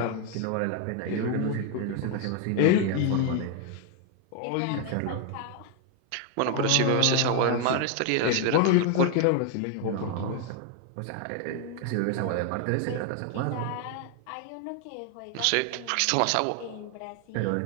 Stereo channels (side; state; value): both; different; correlation 0.00